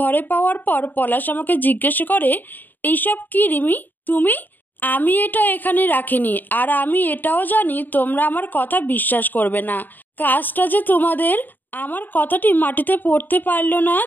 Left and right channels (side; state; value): right; late; 0.089 ms